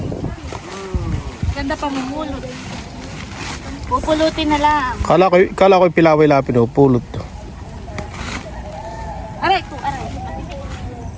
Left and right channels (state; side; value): identical; both; correlation 1.00